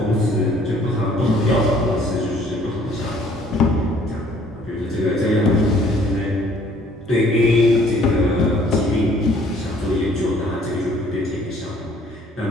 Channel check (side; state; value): both; normal; correlation 0.59